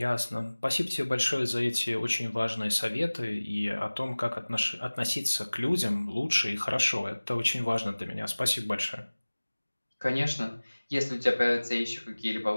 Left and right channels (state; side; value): inverted; both; correlation -1.00